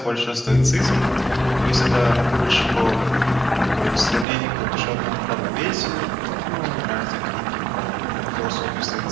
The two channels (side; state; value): left; drops out; at 4.2 s